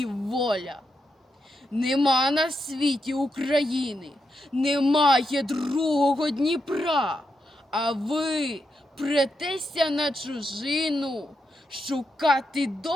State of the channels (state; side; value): normal; both; correlation 0.84